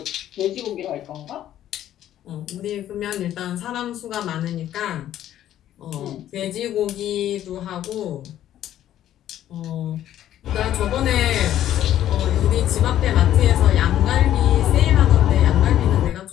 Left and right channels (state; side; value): quieter; right; 12.0 dB